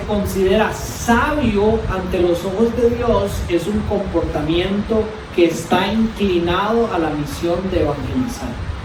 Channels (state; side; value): identical; both; correlation 1.00